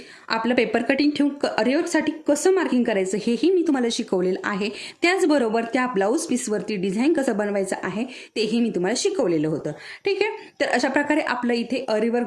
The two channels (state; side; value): identical; both; correlation 1.00